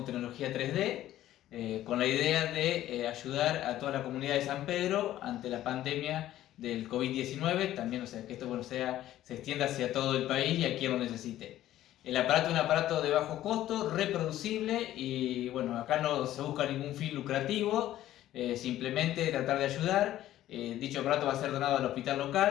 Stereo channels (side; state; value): right; quieter; 13.5 dB